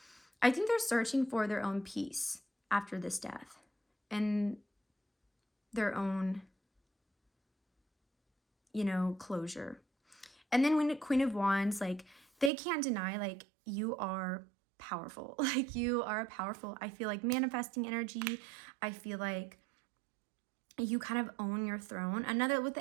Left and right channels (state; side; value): drops out; left; at 12.5 s